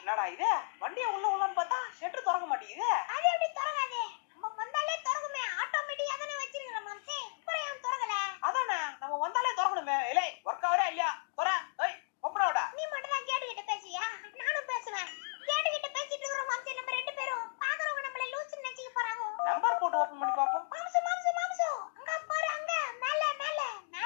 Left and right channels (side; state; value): right; silent; digital silence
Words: என்னடா இது? வண்டியை உள்ள உள்ளன்னு பார்த்தா ஷெட்டு திறக்க மாட்டேங்குது. அது எப்படி திறக்காது? நம்ம வந்தாலே திறக்குமே. ஆட்டோமேட்டிக்கா தானே வச்சிருக்கோம் மாம்சே. அப்புறம் ஏன் திறக்கல? அதானே நம்ம வந்தாலே திறக்கணுமே. ஏலே ஒர்க் ஆவரா இல்லையா? தொற. ஏய் ஓபனோடா. நீ மட்டும் தான் கேட்டுக்கிட்ட பேசியா? நானும் பேசுவேன். கேட்டுக்கிட்ட பேசிட்டு இருக்கோம் மாம்சே. நம்ம ரெண்டு பேரும் பாக்குறவங்க நம்மள லூசுன்னு நினைச்சிக்க போறாங்க. நம்பர் போட்டு ஓபன் பண்ணி பாப்போம். மாம்சே மாம்சே மாம்சே. அங்க பாரு அங்க மேல மேல